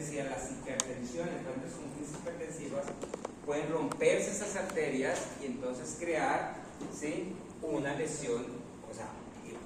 y a las hipertensiones. Entonces, con crisis hipertensivas pueden romperse esas arterias y entonces crear, ¿sí?, una lesión, o sea,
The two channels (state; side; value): identical; both; correlation 1.00